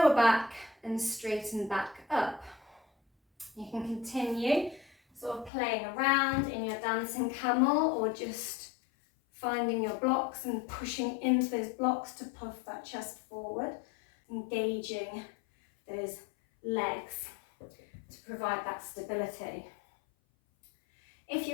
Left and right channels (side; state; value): right; drops out; at 5.5 s